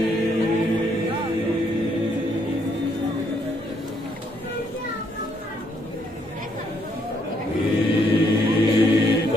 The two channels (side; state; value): both; normal; correlation 0.71